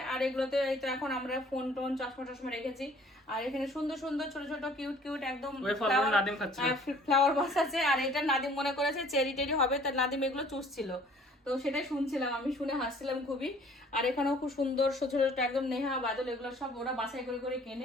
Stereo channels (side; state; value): both; normal; correlation 0.54